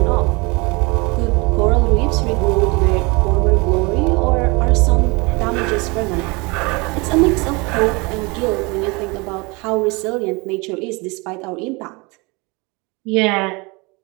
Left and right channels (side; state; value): left; quieter; 26.9 dB